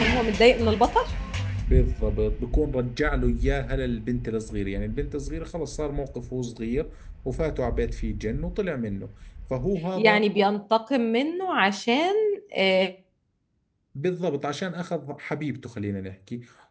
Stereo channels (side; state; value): both; identical; correlation 1.00